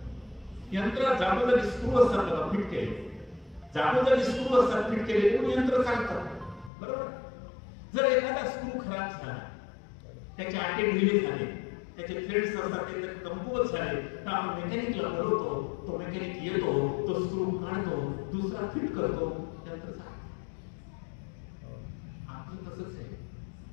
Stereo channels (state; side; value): drops out; right; at 6.7 s